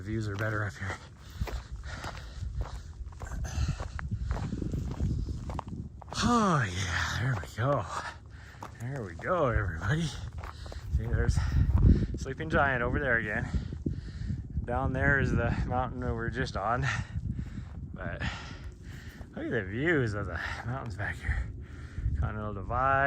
views are better up here. Oh yeah, there we go. There we go, everybody. See, there's Sleeping Giant over there again. Down there is the mountain that we're just on. But look at the views of the mountains back here. Continental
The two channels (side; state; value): both; identical; correlation 1.00